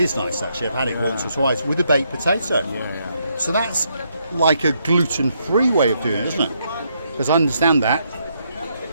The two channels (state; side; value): inverted; both; correlation -0.76